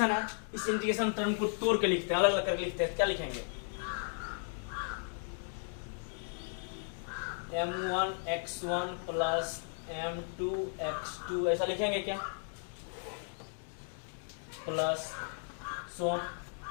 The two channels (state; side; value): silent; right; 54 dB below the other